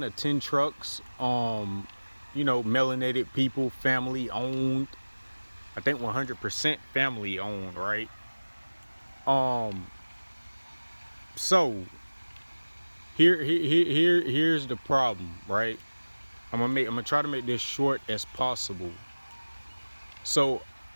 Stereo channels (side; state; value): both; inverted; correlation -1.00